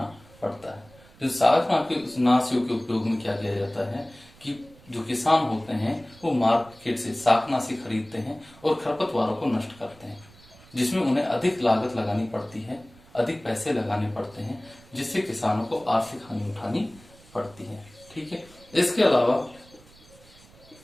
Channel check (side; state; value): right; noise; rumble, 25 dB below the sound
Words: पड़ता है। जो शाकनाशियों के उपयोग में क्या किया जाता है कि जो किसान होते हैं वो मार्केट से शाकनाशी खरीदते हैं और खरपतवारों को नष्ट करते हैं, जिसमें उन्हें अधिक लागत लगानी पड़ती है, अधिक पैसे लगाने पड़ते हैं, जिससे किसानों को आर्थिक हानि उठानी पड़ती है। ठीक है, इसके अलावा